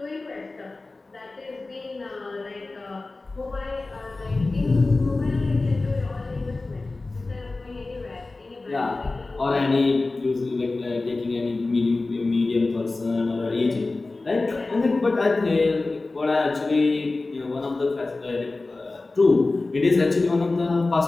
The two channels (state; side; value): quieter; right; 3.3 dB